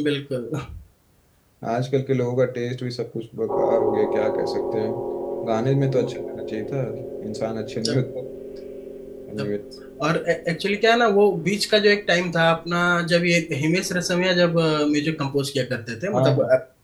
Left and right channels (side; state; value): both; identical; correlation 1.00